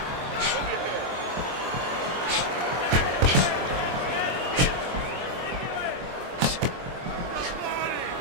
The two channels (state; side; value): late; left; 23 ms